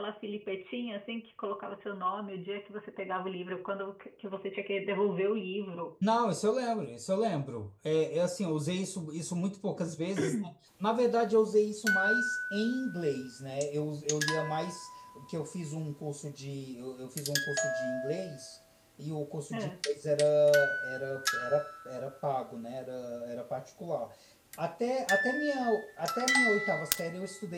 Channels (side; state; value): both; identical; correlation 1.00